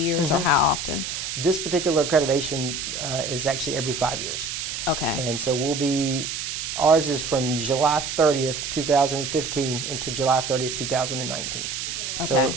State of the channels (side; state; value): right; noise; hiss, 4 dB below the sound